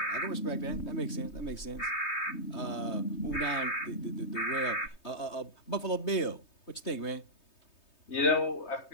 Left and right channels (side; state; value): right; late; 3.2 ms